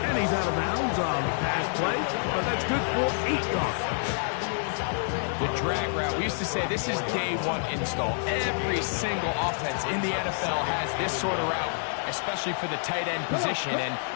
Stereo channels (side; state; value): right; silent; 60 dB below the other